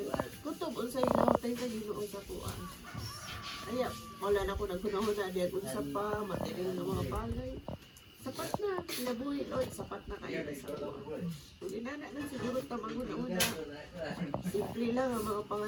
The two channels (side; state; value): both; identical; correlation 1.00